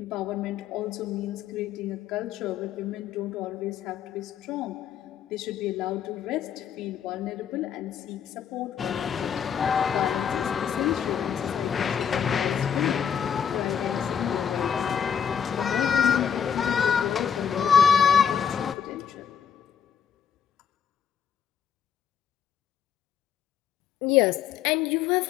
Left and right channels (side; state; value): right; quieter; 7.9 dB